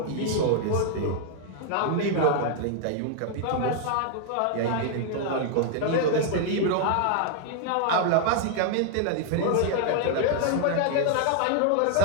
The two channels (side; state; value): both; different; correlation 0.00